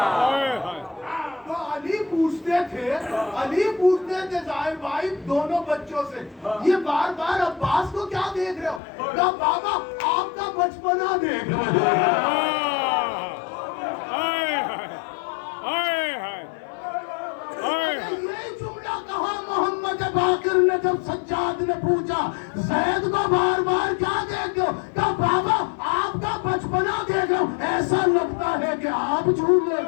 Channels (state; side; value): drops out; right; at 8.8 s